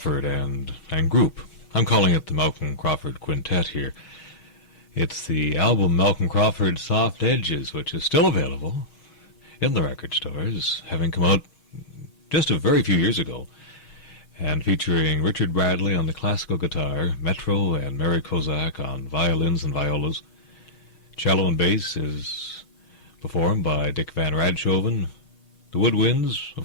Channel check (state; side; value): late; right; 6.6 ms